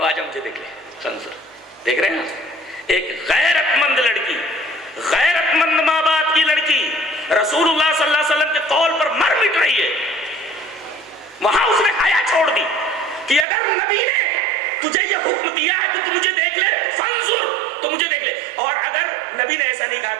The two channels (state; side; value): drops out; left; at 13.5 s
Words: آجا مجھے دیکھ لے. تنظر دیکھ رہے ہیں ایک غیرت مند لڑکی، غیرت مند ماں باپ کی لڑکی رسول اللہ صلی اللہ علیہ وسلم کے قول پر مر مٹ رہی ہے. وہاں اس نے حیا چھوڑ دی کہ اگر نبی نے تجھے یہ حکم دیا ہے کہ تو مجھے دیکھ لے تو فانظر، تو مجھے دیکھ لے، اور اگر نبی نے ایسا نہیں کہا